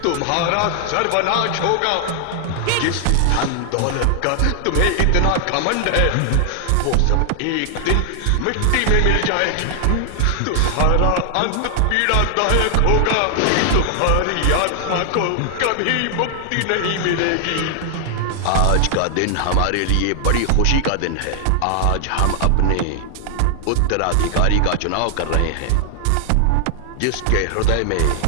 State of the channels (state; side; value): different; both; correlation 0.00